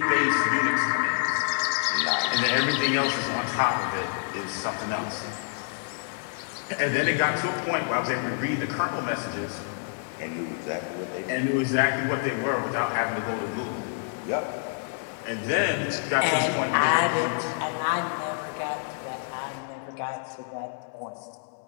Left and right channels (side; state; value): right; silent; 60 dB below the other